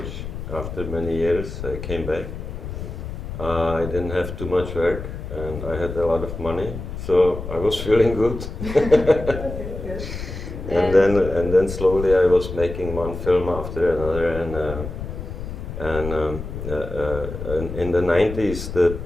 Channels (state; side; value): noise; left; rumble, 8 dB below the sound